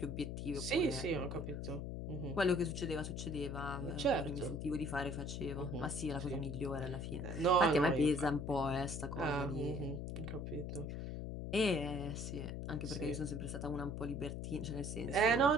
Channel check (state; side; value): noise; left; hum, 5 dB below the sound